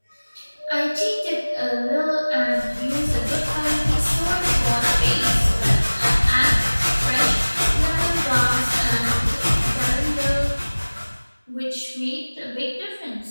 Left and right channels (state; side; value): inverted; both; correlation -1.00